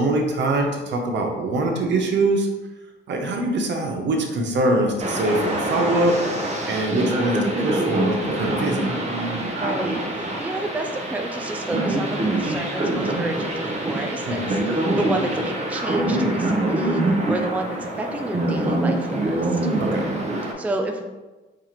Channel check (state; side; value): normal; both; correlation 0.51